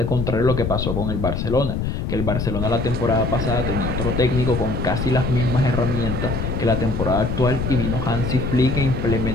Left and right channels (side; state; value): left; noise; rumble, 2 dB below the sound